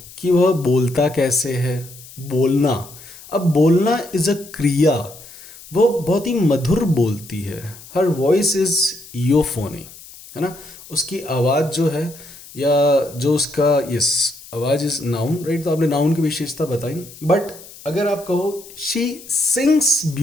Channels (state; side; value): noise; left; hiss, 19 dB below the sound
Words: कि वह बोलता कैसे है। बोलना, अब बोलना इज़ अ क्रिया, वो बहुत ही मधुर बोलती है, हर वॉइस इज़ यूफोनी, है ना, उसकी आवाज़ जो है, या जो उसका, यस, आवाज़ इज नाउन, राइट। तो आपने नाउन की विशेषता बताई, बट अगर आप कहो she sings